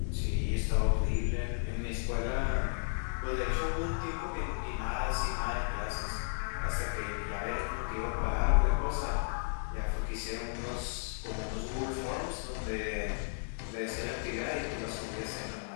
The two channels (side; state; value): right; silent; 55 dB below the other